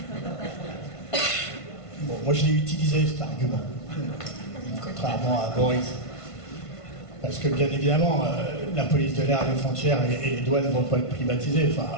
Bon, moi je l'ai utilisé cet argument, contrairement à Boris. Parce que bien évidemment, la police de l'air, les frontières et les douanes ne vont pas être privatisées. Enfin,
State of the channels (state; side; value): late; right; 1.5 ms